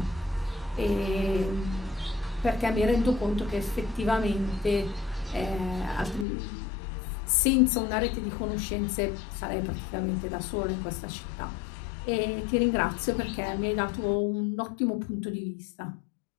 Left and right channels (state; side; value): drops out; right; at 6.2 s